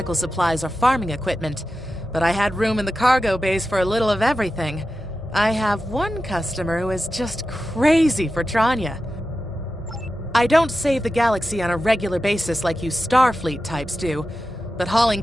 supplies or farming equipment, but I had room in the cargo bays for a little of everything. I have one customer who is just crazy for Tranya. I don't save the galaxy on a regular basis like you Starfleet types do, but hauling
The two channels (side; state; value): both; normal; correlation 0.92